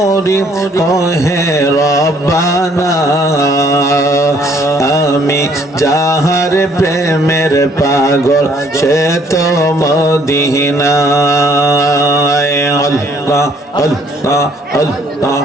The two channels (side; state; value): both; normal; correlation 0.62